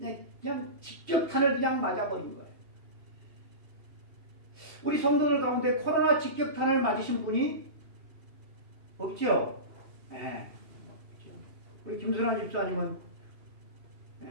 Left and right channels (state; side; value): late; left; 2.7 ms